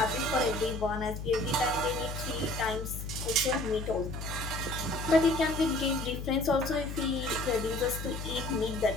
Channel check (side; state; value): left; noise; hum, 7 dB below the sound